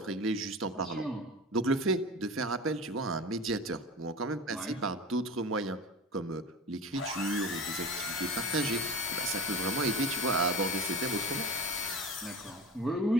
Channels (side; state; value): both; normal; correlation 0.31